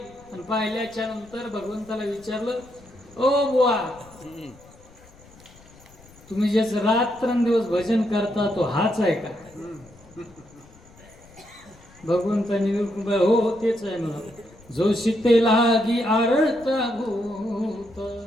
आणि पाहिल्याच्या नंतर भगवंताला विचारलं, ओ बुवा, तुम्ही जे रात्रंदिवस भजन करता तो हाच आहे का? भगवंतांनी हो तेच आहे म्हणून. जो सीते लागी आरत भूत,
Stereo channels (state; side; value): noise; left; rumble, 24 dB below the sound